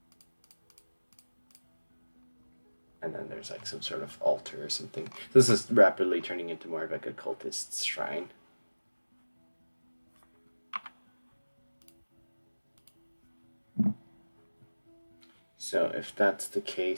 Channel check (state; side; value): inverted; both; correlation -1.00